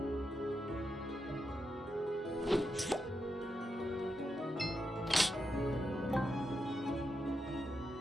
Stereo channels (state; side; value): normal; both; correlation 0.85